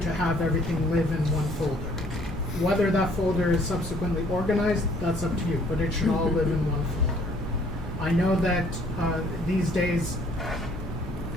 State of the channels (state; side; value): normal; both; correlation 0.60